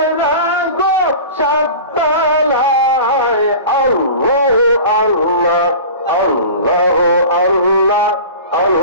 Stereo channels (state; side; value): inverted; both; correlation -0.36